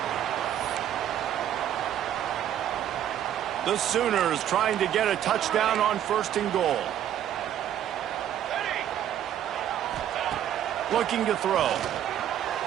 The Sooners trying to get a touchdown on 1st and goal. Looking to throw.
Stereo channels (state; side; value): quieter; left; 10.8 dB